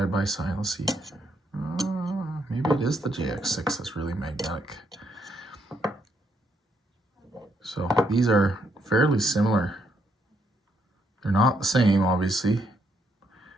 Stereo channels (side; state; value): both; normal; correlation 0.75